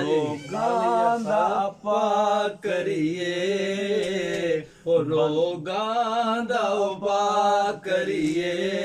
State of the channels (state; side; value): identical; both; correlation 1.00